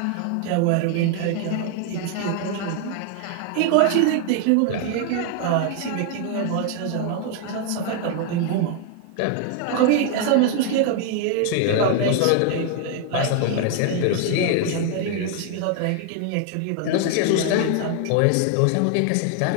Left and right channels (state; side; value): different; both; correlation 0.00